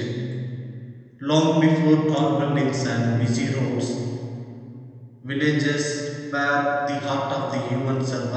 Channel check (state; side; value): identical; both; correlation 1.00